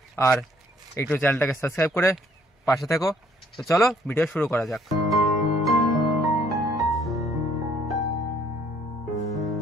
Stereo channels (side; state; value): both; normal; correlation 0.63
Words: আর একটু চ্যানেলটাকে সাবস্ক্রাইব করে পাশে থেকো। তো চলো ভিডিও শুরু করা যাক।